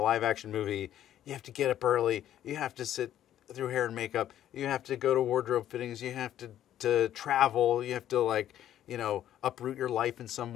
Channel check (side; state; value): right; quieter; 11.6 dB